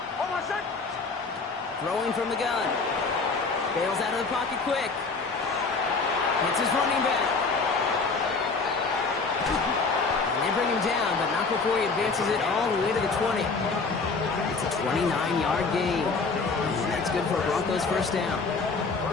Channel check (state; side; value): quieter; right; 4.3 dB